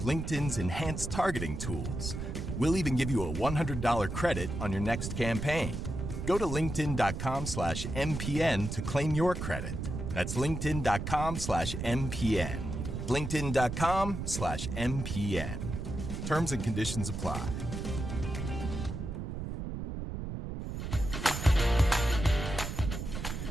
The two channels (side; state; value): right; noise; rumble, 5 dB below the sound